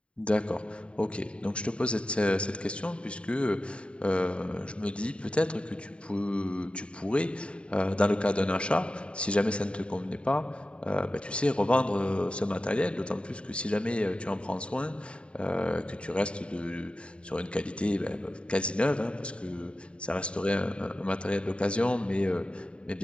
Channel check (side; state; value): right; late; 0.057 ms